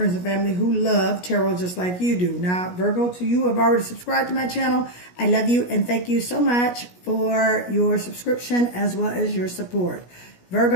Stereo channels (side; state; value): right; late; 17 ms